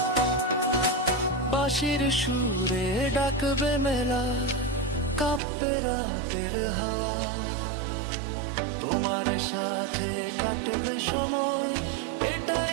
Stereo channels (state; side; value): drops out; left; at 5.4 s